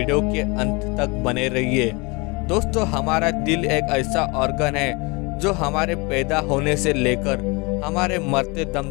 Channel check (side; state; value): right; quieter; 27.2 dB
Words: के अंत तक बने रहिए। दोस्तों हमारा दिल एक ऐसा ऑर्गन है जो हमारे पैदा होने से लेकर हमारे मरते